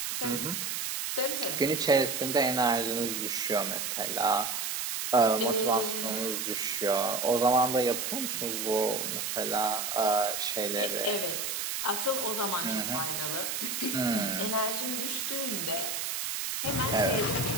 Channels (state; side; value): noise; right; hiss, 2 dB below the sound